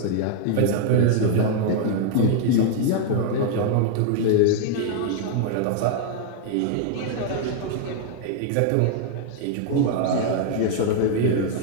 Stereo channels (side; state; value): both; different; correlation 0.00